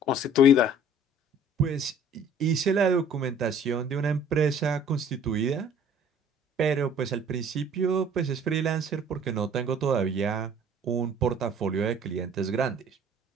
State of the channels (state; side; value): normal; both; correlation 0.52